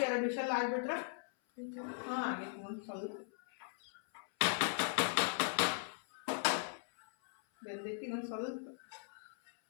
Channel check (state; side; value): silent; right; 52 dB below the other